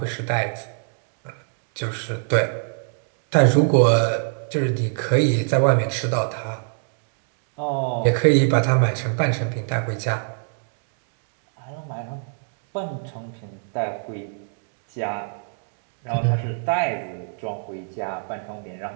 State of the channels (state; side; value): silent; left; digital silence